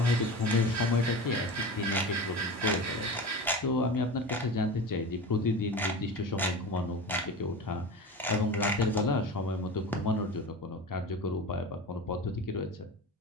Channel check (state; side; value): normal; both; correlation 0.30